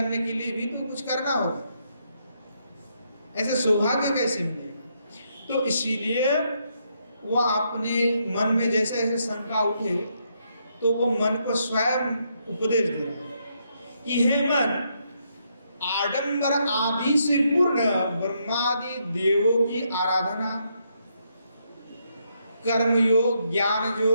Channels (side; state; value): both; inverted; correlation -0.77